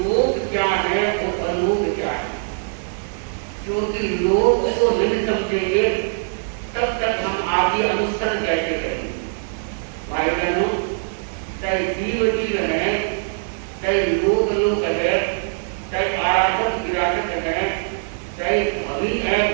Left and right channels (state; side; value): silent; left; 64 dB below the other